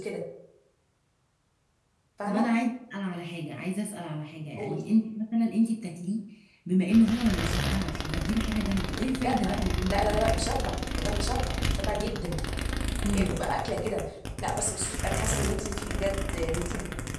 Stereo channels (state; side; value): identical; both; correlation 1.00